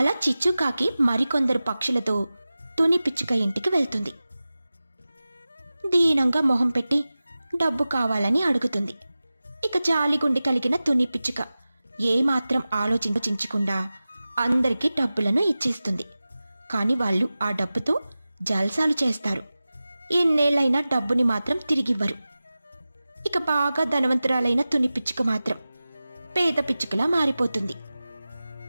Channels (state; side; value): inverted; both; correlation -0.96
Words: చిచ్చుకాకి మరికొందరు పక్షులతో తుని పిచ్చుక ఇంటికి వెళ్తుంది. దీనంగా మొహం పెట్టి డబ్బు కావాలని అడుగుతుంది. ఇక జాలిగుండి కలిగిన తుని పిచ్చుక ఏమాత్రం ఆలోచించకుండా అందరికీ డబ్బులను ఇచ్చేస్తుంది. కాని వాళ్ళు ఆ డబ్బుతో జల్సాలు చేస్తారు. ఎన్నేళ్లైనా డబ్బుని మాత్రం తిరిగివ్వరు. ఇక బాగా ధనవంతురాలైన తుని పిచ్చుక మాత్రం పేద పిచ్చుకలా మారిపోతుంది.